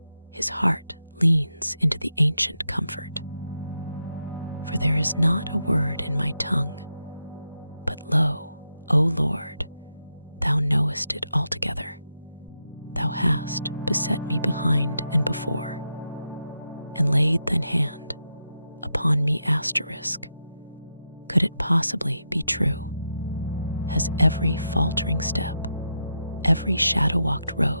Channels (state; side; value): inverted; both; correlation -0.86